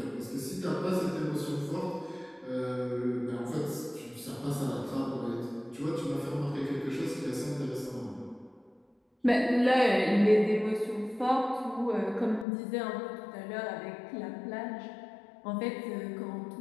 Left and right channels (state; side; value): drops out; right; at 12.5 s